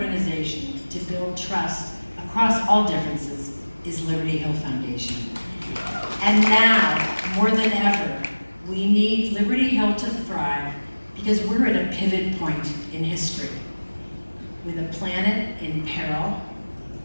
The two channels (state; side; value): inverted; both; correlation -1.00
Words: to build trust across all differences is Liberty Hill Foundation. And now, more than ever, we need Liberty Hill to thrive because we're at a pivot point in history with a planet in peril,